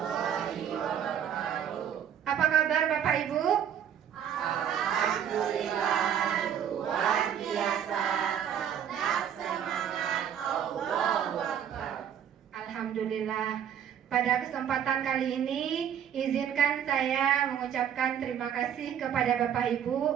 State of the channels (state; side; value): quieter; left; 9.1 dB